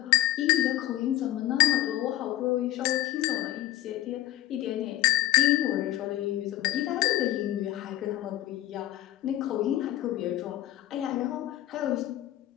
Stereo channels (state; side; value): quieter; right; 14.6 dB